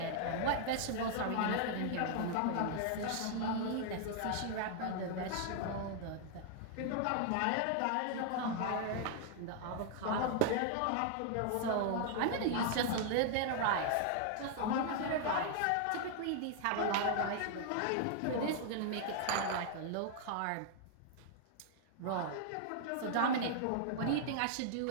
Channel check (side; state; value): both; different; correlation 0.00